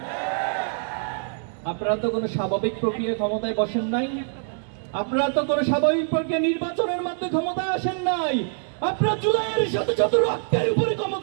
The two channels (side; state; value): left; silent; digital silence